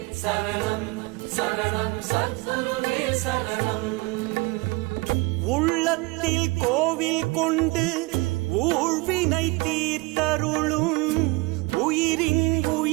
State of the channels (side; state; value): left; quieter; 24.7 dB